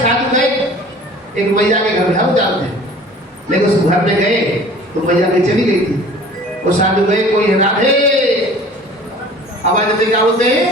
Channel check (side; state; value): both; normal; correlation 0.46